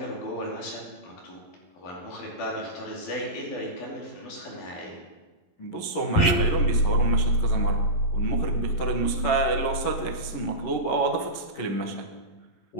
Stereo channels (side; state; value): right; late; 11 ms